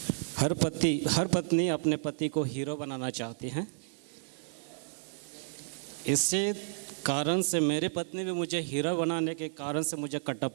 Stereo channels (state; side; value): silent; left; digital silence